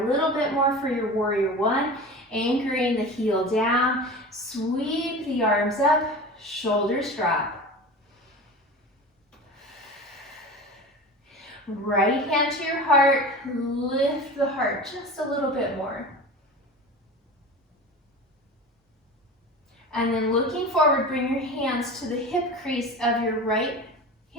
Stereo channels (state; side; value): normal; both; correlation 0.33